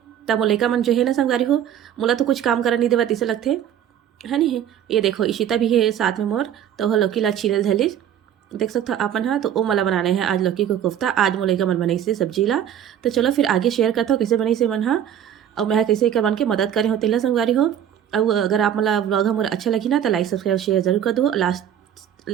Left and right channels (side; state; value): left; quieter; 10.0 dB